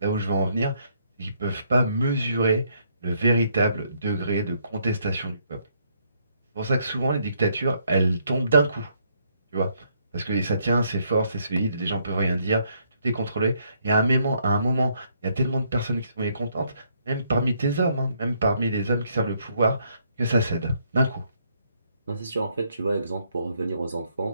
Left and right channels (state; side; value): inverted; both; correlation -0.71